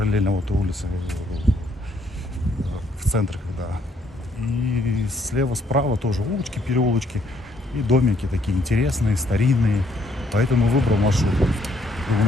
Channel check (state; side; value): normal; both; correlation 0.70